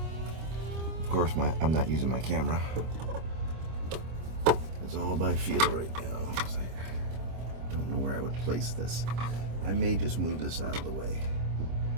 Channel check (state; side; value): late; left; 25 ms